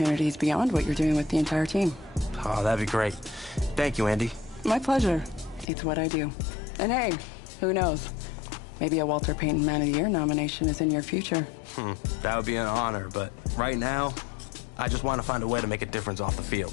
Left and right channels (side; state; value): right; drops out; at 5.7 s